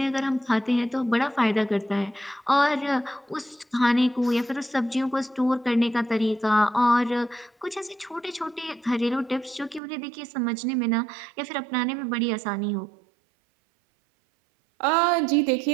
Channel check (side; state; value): left; drops out; at 9.8 s